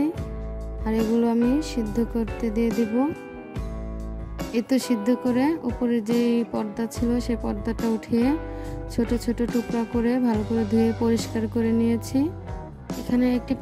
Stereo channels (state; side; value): identical; both; correlation 1.00